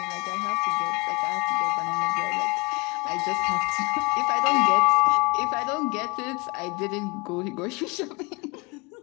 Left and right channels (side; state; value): right; quieter; 27.9 dB